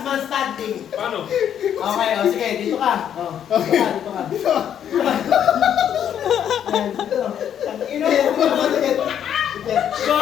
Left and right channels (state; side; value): quieter; right; 9.4 dB